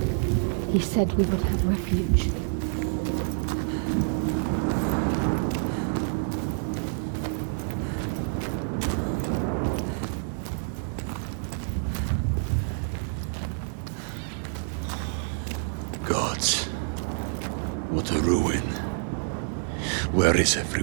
He said we would have refuge. Gods, what a ruin. Where is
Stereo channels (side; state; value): left; silent; 60 dB below the other